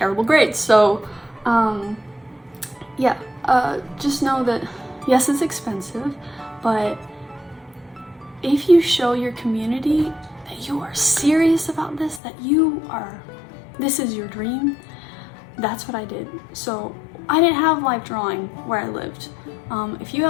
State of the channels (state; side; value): drops out; right; at 12.2 s